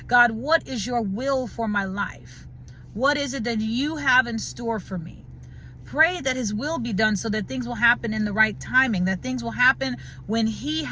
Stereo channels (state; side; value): identical; both; correlation 1.00